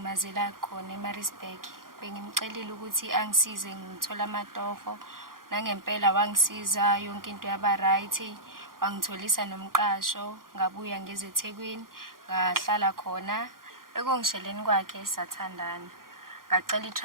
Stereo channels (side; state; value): left; late; 0.91 ms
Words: khona eMaritzburg. Bengimcelile ukuthi angisize ngithola amatoho. Nangempela wangisiza yonke into yaba right. Wangitholisa nomqasho, ngabuya ngeze eThekwini, ngahlala khona. Ekongisheleni kwakhe sathandana. Ngacela